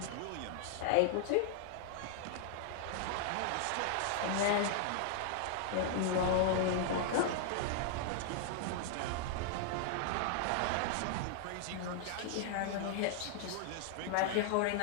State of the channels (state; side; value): different; both; correlation -0.01